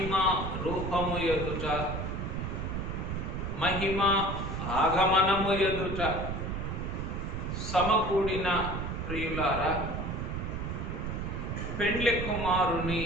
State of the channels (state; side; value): noise; right; rumble, 4 dB below the sound